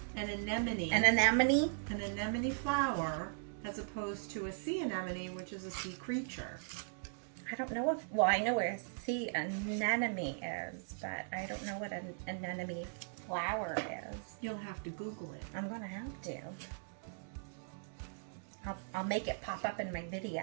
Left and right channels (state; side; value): silent; left; digital silence